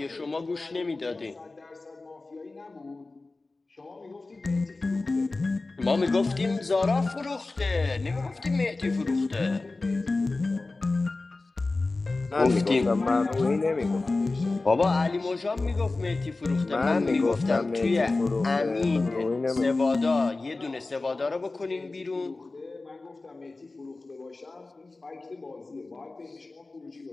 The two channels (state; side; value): quieter; right; 3.4 dB